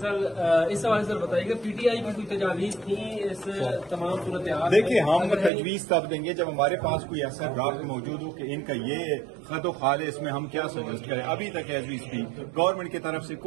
اس حوالے سے بتائیے گا پی ٹی آئی کی کوئی تجاویز تھی اس تمام صورتحال؟ دیکھیں ہم تجویز تب دیں گے جب ہمارے پاس کوئی ایسا ڈرافٹ موجود ہو کہ ان کا یہ خط و خال ہے، اس میں ہم کیا سجیسٹ کریں. ابھی تک ایز وی اسپیک گورنمنٹ کی طرف سے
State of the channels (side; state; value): left; drops out; at 5.5 s